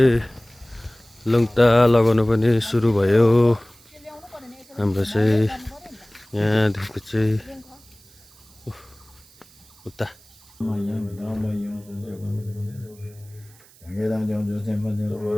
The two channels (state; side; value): noise; right; hiss, 26 dB below the sound